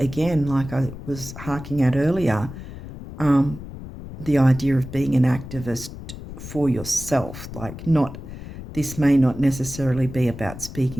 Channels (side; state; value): left; noise; rumble, 12 dB below the sound